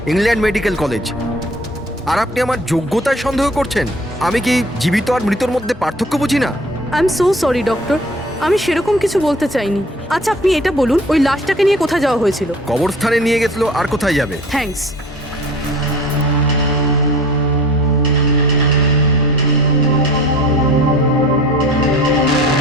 England medical college. আর আপনি আমার যোগ্যতায় সন্দেহ করছেন? আমি কি জীবিত আর মৃতর মধ্যে পার্থক্য বুঝি না? I am so sorry doctor, আমি সেরকম কিছু বলতে চাইনি। আচ্ছা আপনি এটা বলুন, ওই লাশটাকে নিয়ে কোথায় যাওয়া হয়েছিল? কবরস্থানে নিয়ে গেছিল, আর কোথায় যাবে? থ্যাঙ্কস।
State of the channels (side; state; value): both; normal; correlation 0.46